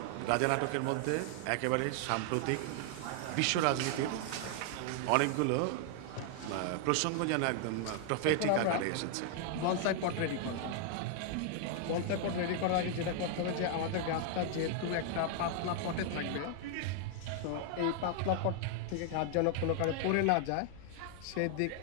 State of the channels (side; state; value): both; different; correlation 0.00